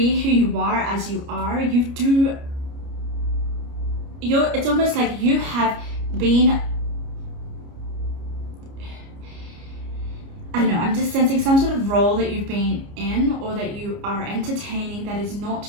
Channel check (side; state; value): left; late; 29 ms